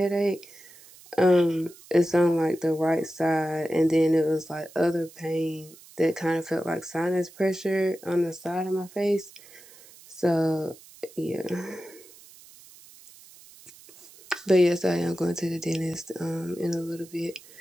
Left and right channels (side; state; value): right; noise; hiss, 22 dB below the sound